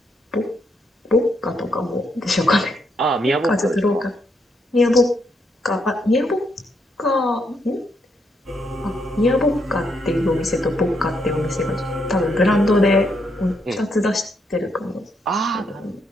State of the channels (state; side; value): normal; both; correlation 0.76